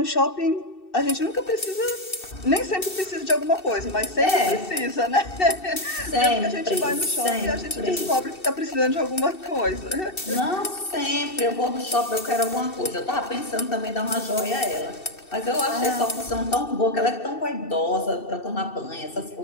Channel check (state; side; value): late; right; 2.7 ms